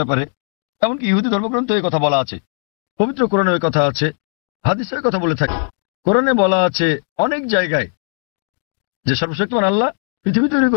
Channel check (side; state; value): right; silent; digital silence